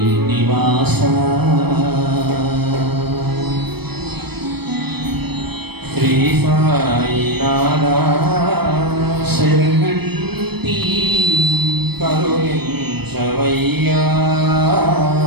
నివాస శ్రీ సాయినాథ శరణంటి కరుణించవయ్యా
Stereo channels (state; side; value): late; left; 0.97 ms